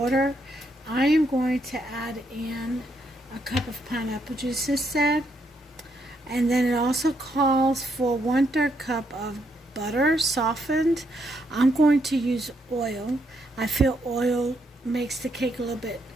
I am going to add in a cup of pineapple juice instead, and then it also calls for 1/3 cup of butter softened. I'm going to use oil. I feel oil makes the cake a little bit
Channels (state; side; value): normal; both; correlation 0.76